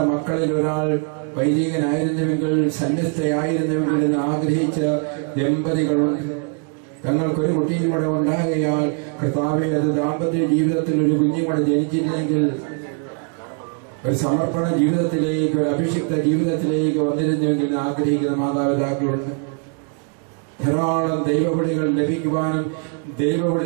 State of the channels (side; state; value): left; quieter; 38.9 dB